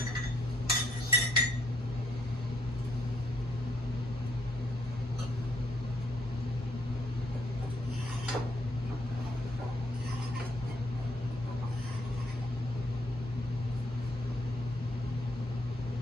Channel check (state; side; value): normal; both; correlation 0.71